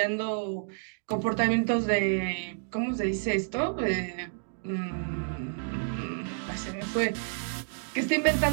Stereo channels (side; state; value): left; silent; digital silence